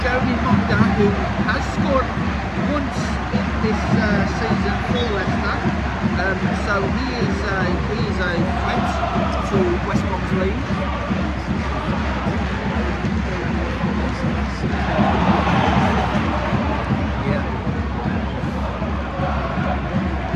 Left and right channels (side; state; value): both; identical; correlation 1.00